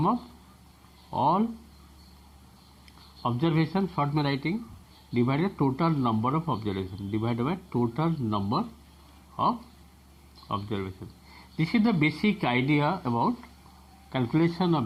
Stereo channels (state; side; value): identical; both; correlation 1.00